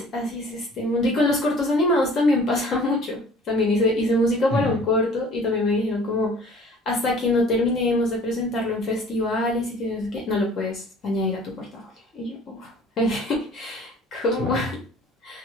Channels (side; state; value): both; normal; correlation 0.50